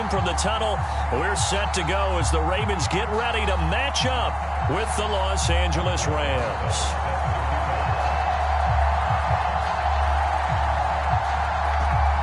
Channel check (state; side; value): identical; both; correlation 1.00